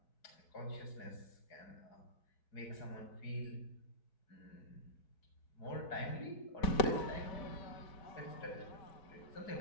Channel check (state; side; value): late; right; 5.1 ms